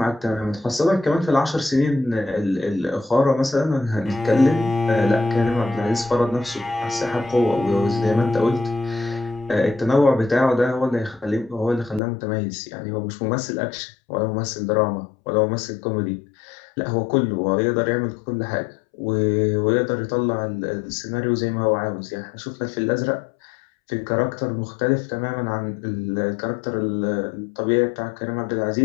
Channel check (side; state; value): right; drops out; at 12.0 s